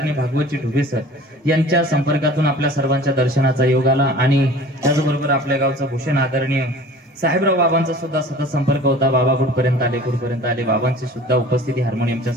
भागवतजी ढुबे सर यांच्या संपर्कातून आपल्या सर्वांच्या दर्शनाचा योग आला, आणि त्याचबरोबर आपल्या गावचं भूषण आदरणीय साहेबराव बाबांचा सुद्धा सतत संपर्क होता. बाबा कुठपर्यंत आले. बाबांची सुद्धा उपस्थिती हार्मोनियमच्या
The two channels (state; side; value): normal; both; correlation 0.44